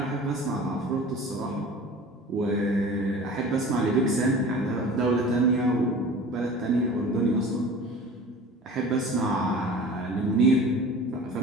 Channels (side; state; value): both; normal; correlation 0.40